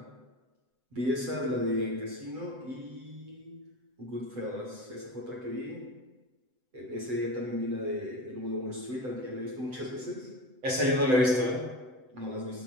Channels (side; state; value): left; late; 7.9 ms